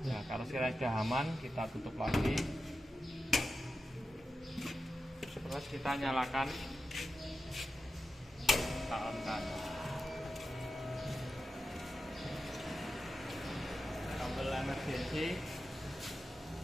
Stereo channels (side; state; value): both; normal; correlation 0.91